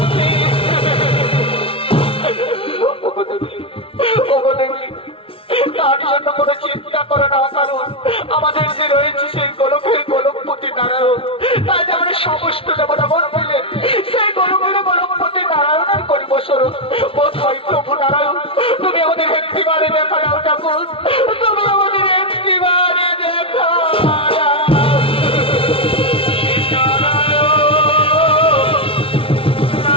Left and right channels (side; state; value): right; late; 0.26 ms